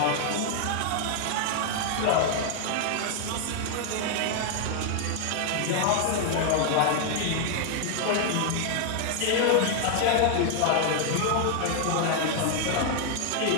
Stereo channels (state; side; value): different; both; correlation 0.00